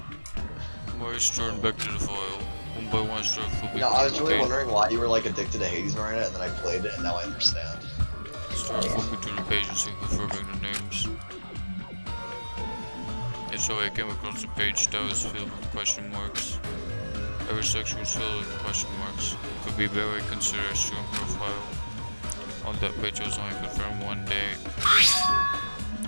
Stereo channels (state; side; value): inverted; both; correlation -1.00